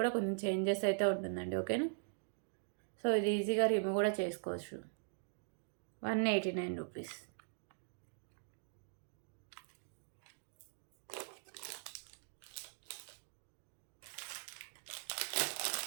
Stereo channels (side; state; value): left; silent; digital silence